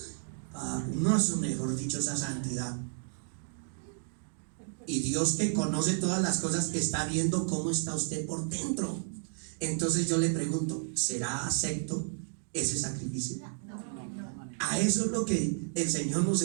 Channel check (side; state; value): left; silent; 56 dB below the other